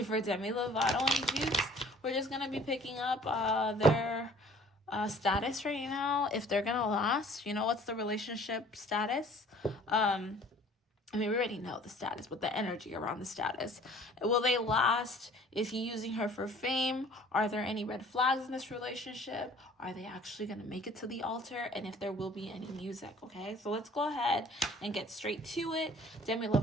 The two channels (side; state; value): both; normal; correlation 0.52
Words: for Demi Lovato Jutes. We're just going to be picking up their status right now, if they're going to last. You know, what's the relationship status? We already know the status, but the energy around the status. Will they last? Is he using her for fame? Are there any red flags in this relationship? Are they actually going to make it to the altar? And if there will be any music, okay? So let's go ahead and get straight to it. Demi